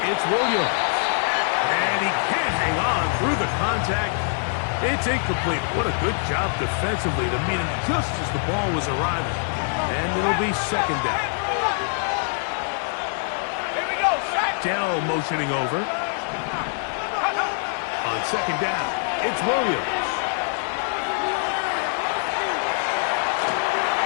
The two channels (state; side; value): silent; right; 63 dB below the other